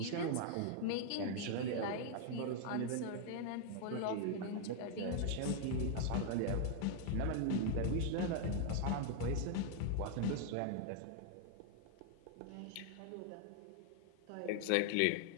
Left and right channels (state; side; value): different; both; correlation 0.00